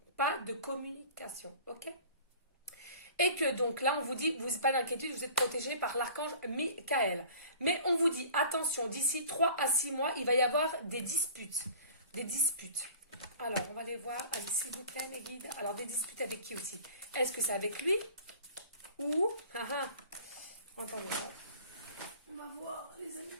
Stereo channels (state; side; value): inverted; both; correlation -0.45